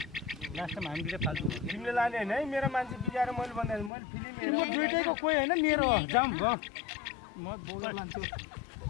लास्ट टाइम हामीले फाल्तु भयो तिमीले लाने होइन है मेरो मान्छे बिगाएर मैले भन्दा मैले फिल्म म हेरेँ दुइटैको कोही होइन मेरो हो जाऊँ ग म बोकेर लान्छु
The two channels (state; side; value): drops out; right; at 3.9 s